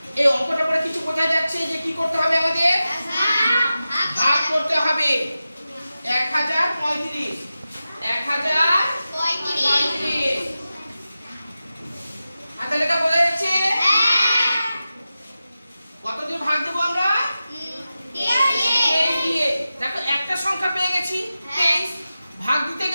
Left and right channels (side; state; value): both; inverted; correlation -0.93